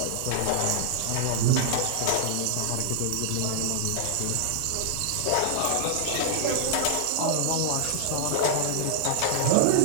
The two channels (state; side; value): different; both; correlation -0.01